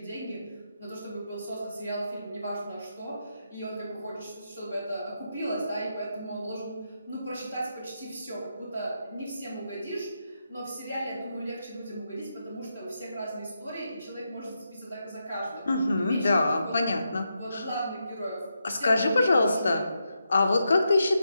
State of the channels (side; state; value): both; inverted; correlation -0.84